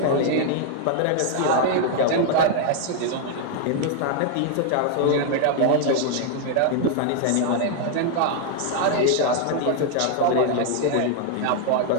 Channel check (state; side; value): different; both; correlation 0.00